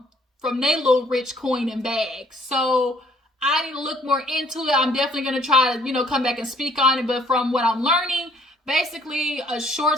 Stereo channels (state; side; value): normal; both; correlation 0.61